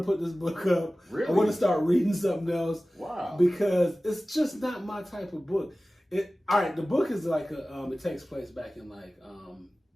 put this book up. Really? I want to start reading something else. Wow. Because it's just not my type of book. The book is like it takes place back in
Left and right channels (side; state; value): both; normal; correlation 0.97